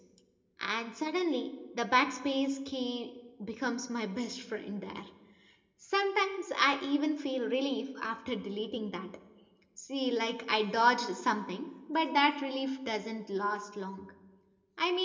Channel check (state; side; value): identical; both; correlation 1.00